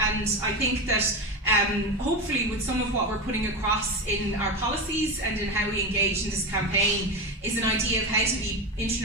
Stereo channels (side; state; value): both; normal; correlation 0.19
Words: and I think that hopefully with some of what we're putting across in our policies and in how we engage in this campaign is an idea of how to be